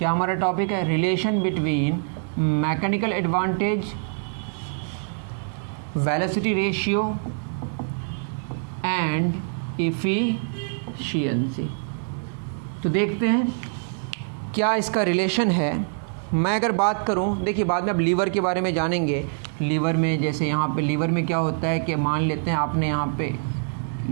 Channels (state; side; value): silent; left; digital silence